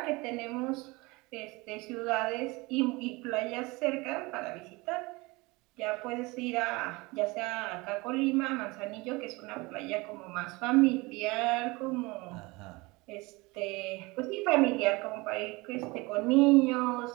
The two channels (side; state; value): left; quieter; 24.0 dB